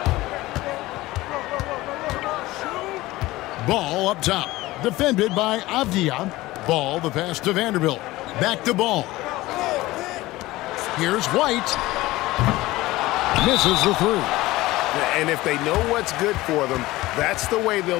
Ball up top. Defended by Avdia. Ball, the pass to Vanderbilt. Back to Ball. Here's White. Misses the 3. And if they know what's good for them, that's the way they'll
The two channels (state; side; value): quieter; right; 18.4 dB